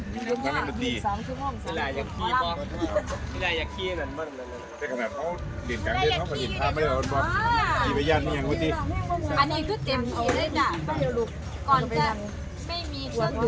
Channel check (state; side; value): identical; both; correlation 1.00